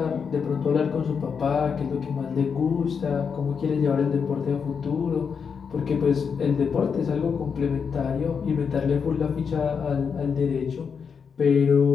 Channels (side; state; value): right; quieter; 6.3 dB